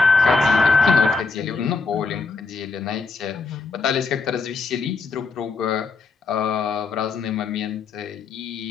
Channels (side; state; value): right; quieter; 4.3 dB